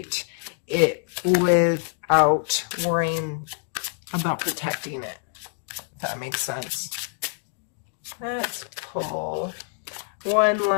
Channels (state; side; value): silent; right; 61 dB below the other